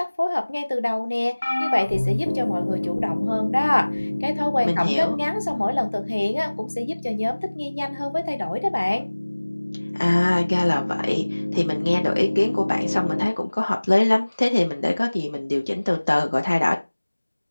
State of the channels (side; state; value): both; inverted; correlation -1.00